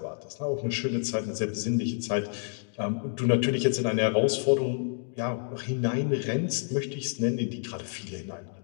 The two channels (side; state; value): right; silent; 59 dB below the other